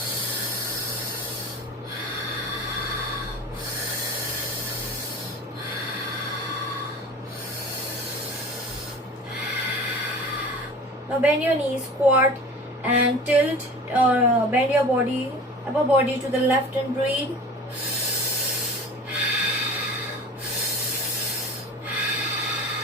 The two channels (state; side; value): normal; both; correlation 0.39